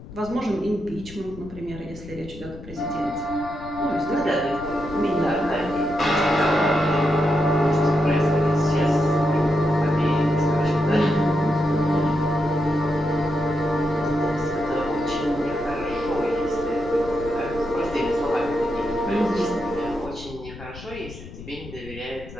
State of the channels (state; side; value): noise; left; rumble, 15 dB below the sound